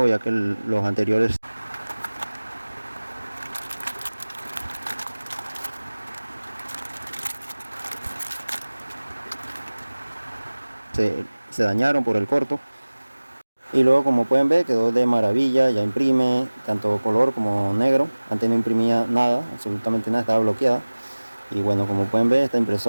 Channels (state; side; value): inverted; both; correlation -1.00